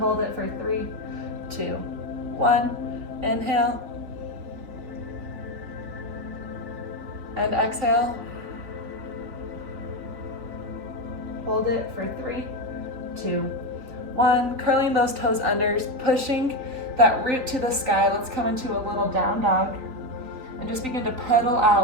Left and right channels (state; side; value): late; left; 3.9 ms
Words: for 3, 2, 1. Inhale. And exhale. Hold it for 3, 2, 1. Curling those toes under, pushing that root to the sky. Let's come into a little down dog and just begin to pedal